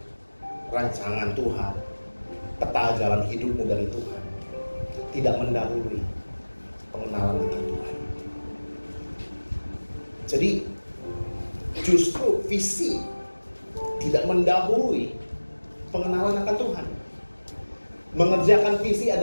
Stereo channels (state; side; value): inverted; both; correlation -1.00